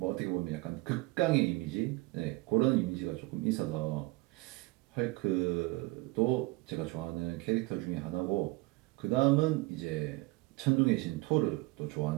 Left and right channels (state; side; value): quieter; left; 22.3 dB